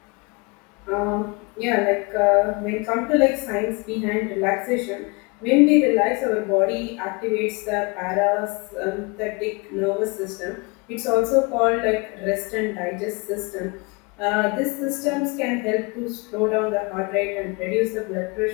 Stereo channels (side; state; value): right; quieter; 28.9 dB